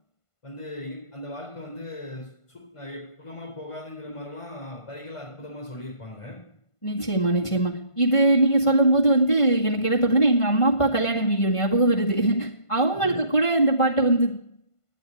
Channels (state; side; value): late; right; 1.5 ms